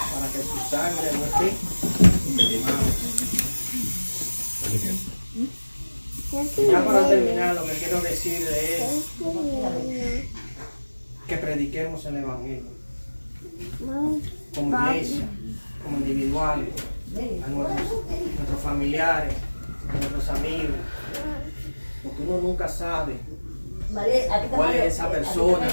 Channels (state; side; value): inverted; both; correlation -1.00